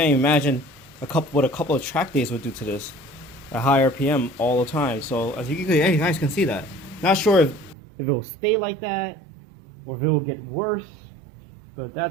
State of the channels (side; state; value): left; drops out; at 7.8 s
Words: even imagine what a couple of track days would do to this at high RPM all the time. So as you guys can see that. Not sure if it will stay like that or if it will get worse, but